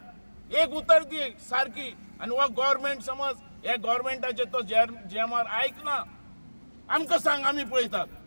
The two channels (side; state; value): both; inverted; correlation -1.00